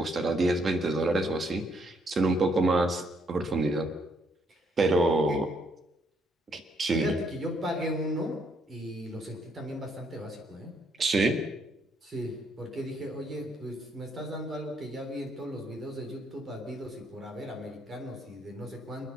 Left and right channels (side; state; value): both; normal; correlation 0.71